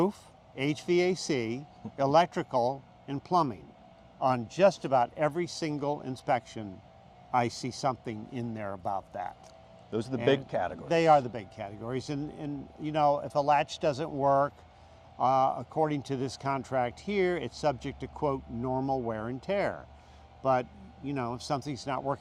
HVAC, electrical, and plumbing. On just about every single inspection, I see something in there about that. Those are the big categories. They are the big categories. And if a latch doesn't work, according to this contract here, it's subject to, quote, normal wear and tear. But, if something's not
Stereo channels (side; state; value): both; identical; correlation 1.00